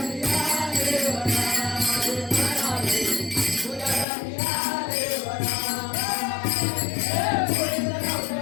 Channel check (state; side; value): drops out; right; at 4.0 s